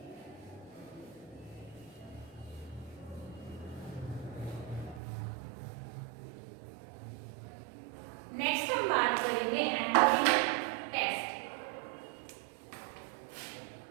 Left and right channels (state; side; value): drops out; left; at 5.0 s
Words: नेक्स्ट हम बात करेंगे एनिमेशन टेक्स्ट.